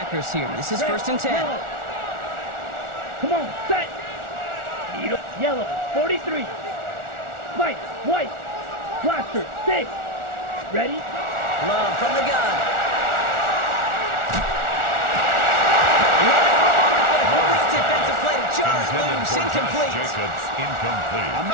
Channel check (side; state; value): left; late; 1.4 ms